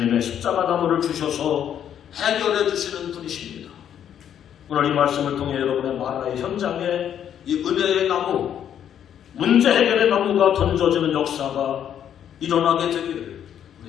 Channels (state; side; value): quieter; right; 9.6 dB